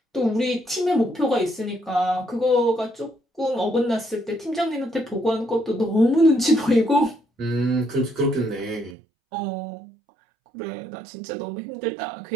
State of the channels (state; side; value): drops out; left; at 9.0 s